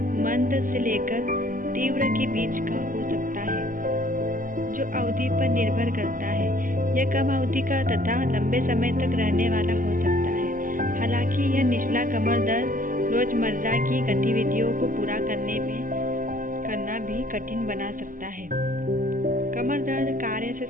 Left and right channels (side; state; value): left; late; 0.40 ms